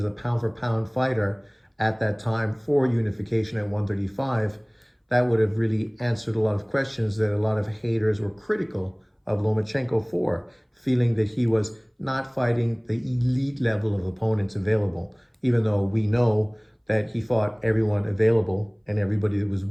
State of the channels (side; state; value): both; identical; correlation 1.00